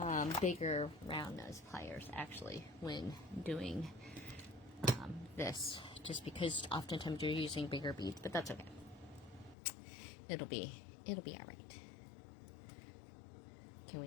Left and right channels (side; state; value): right; drops out; at 9.6 s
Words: bigger round nose pliers actually when doing this, just because oftentimes you're using bigger beads, but that's okay. It'll be all right. Can